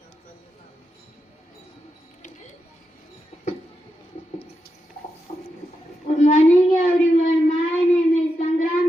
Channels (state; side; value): normal; both; correlation 0.87